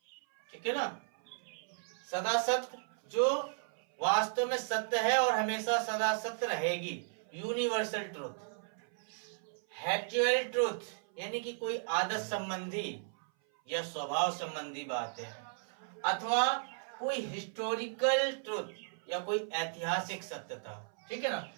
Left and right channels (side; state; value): left; silent; 54 dB below the other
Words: ठीक है ना, सदा सत्य जो वास्तव में सत्य है और हमेशा सदा सत्य रहेगी, यूनिवर्सल ट्रूथ, हैप्चुअल ट्रूथ यानी कि कोई आदत संबंधी या स्वभाव संबंधी बात है, अथवा कोई हिस्टोरिकल ट्रूथ या कोई ऐतिहासिक सत्यता, ठीक है ना,